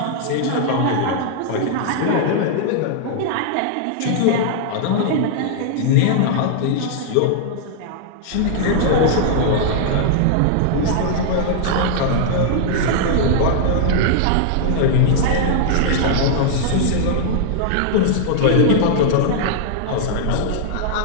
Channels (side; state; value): both; different; correlation -0.01